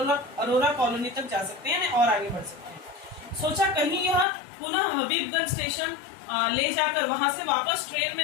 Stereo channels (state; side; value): drops out; right; at 4.2 s